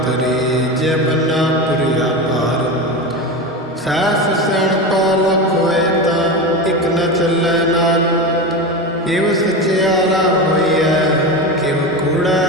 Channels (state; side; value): normal; both; correlation 0.22